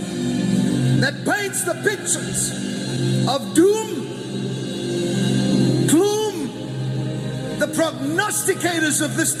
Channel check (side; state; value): both; identical; correlation 1.00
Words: that paints the pictures of doom, gloom, the prognosticators of this